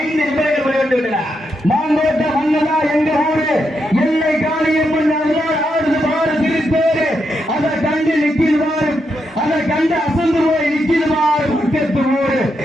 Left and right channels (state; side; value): normal; both; correlation 0.82